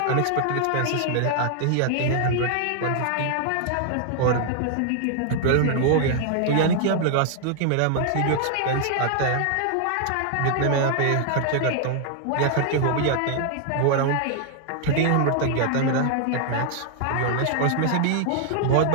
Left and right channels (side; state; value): both; different; correlation 0.00